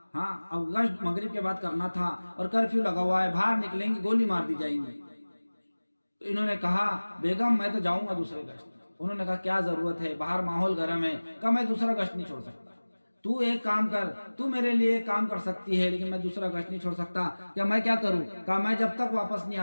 ہاں اب گشت مغرب کے بعد کرنا تھا اور کرفیو لگا ہوا ہے، باہر نکلیں گے گولی مار دی جائیں گی۔ تو انہوں نے کہا بیگم میں تو جاؤں گا دوسرے گشت۔ انہوں نے کہا کیا ضرورت ہے، باہر ماحول گرم ہے۔ کہا میں دوسرا گشت نہیں چھوڑ سکتا، تو ایک کام کر، تو میرے لیے ایک کام کر سکتی ہے لیکن میں دوسرا گشت نہیں چھوڑ سکتا۔ کیا میں کیا کروں؟ کہا میں جب تک واپس نہیں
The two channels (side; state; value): both; inverted; correlation -1.00